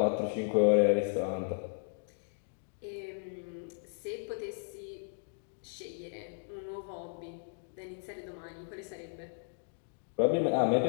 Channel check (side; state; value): right; silent; digital silence